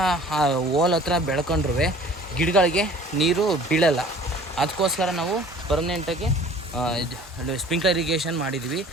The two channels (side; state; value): both; normal; correlation 0.48